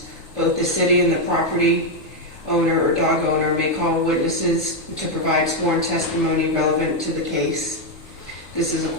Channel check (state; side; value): normal; both; correlation 0.03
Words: Both the city and the property owner or dog owner may call witnesses to provide sworn testimony relevant to the case. This is a